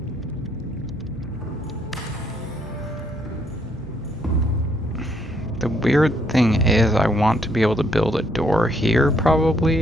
The weird thing is I want to be able to build a door here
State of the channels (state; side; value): normal; both; correlation 0.70